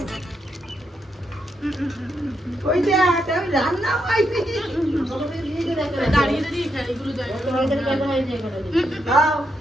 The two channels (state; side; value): normal; both; correlation 0.81